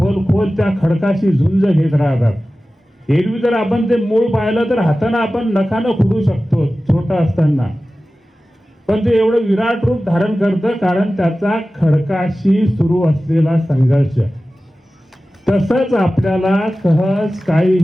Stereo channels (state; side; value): normal; both; correlation 0.96